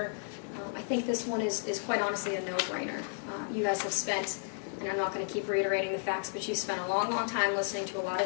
I think this one is quite honestly a no-brainer. You guys have spent, and I'm not going to keep reiterating the facts, but you spent a long, long time listening to a lot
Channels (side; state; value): right; silent; digital silence